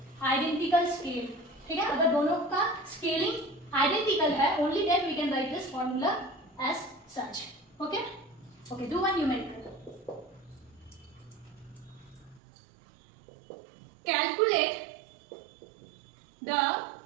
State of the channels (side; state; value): left; drops out; at 12.4 s